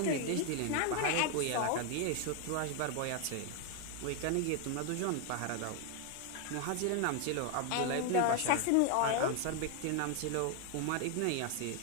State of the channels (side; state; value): both; different; correlation 0.01